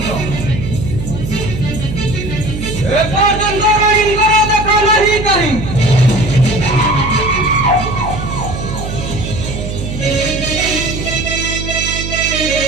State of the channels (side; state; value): right; noise; hum, 6 dB below the sound